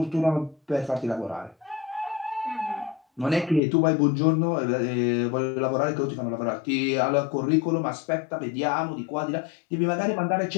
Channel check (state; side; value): drops out; right; at 3.6 s